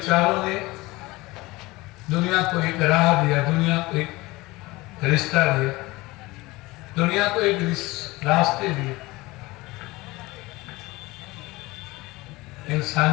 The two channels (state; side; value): quieter; right; 21.2 dB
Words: ने दुनिया को एक राह दिया, दुनिया को एक रिश्ता दिया, दुनिया को एक रास्ते दिए